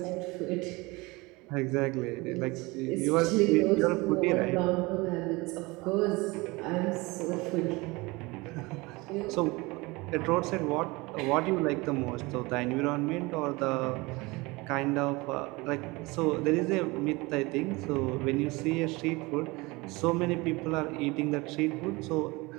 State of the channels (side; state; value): left; quieter; 23.8 dB